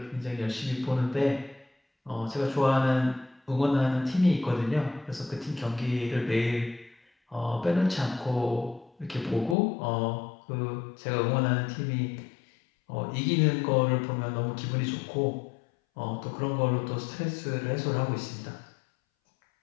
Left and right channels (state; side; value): drops out; right; at 9.6 s